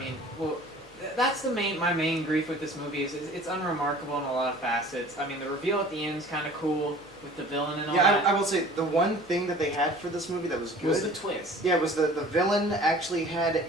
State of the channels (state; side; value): noise; left; hum, 28 dB below the sound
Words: that's my main grief with this movie is it's unremarkable in a lot of facets. The reveal at the end is kind of cool with the villain and all that. I will say the one thing that they had for this movie that was good was the twist. Yeah, was the villain actually had